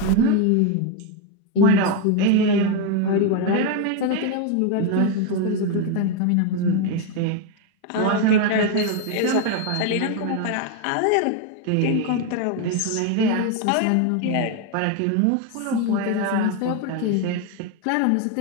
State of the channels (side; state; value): both; different; correlation 0.02